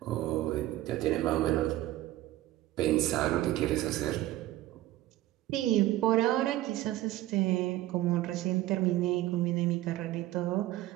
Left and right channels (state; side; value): quieter; left; 15.3 dB